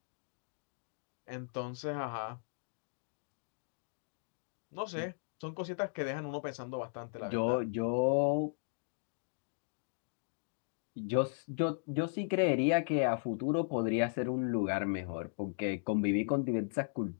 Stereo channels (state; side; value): silent; right; digital silence